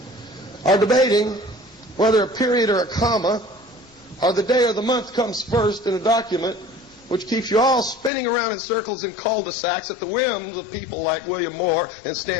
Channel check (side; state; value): right; drops out; at 8.1 s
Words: Are debating whether a period or a comma or the day or the month comes first in a document which keeps you all spinning around in circles in cul-de-sacs at the whims of people like William Moore and